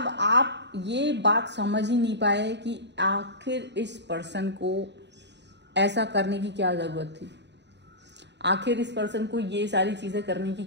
आप ये बात समझ ही नहीं पाए कि आखिर इस पर्सन को ऐसा करने की क्या ज़रूरत थी, आखिर इस पर्सन को ये सारी चीज़ें करने की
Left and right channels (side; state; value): left; late; 0.51 ms